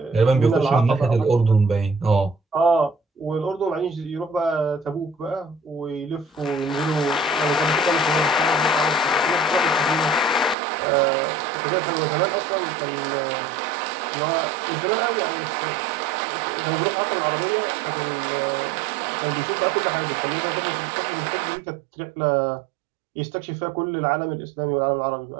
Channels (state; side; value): drops out; left; at 10.6 s